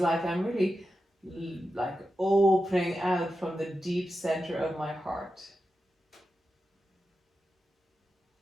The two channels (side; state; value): both; normal; correlation 0.90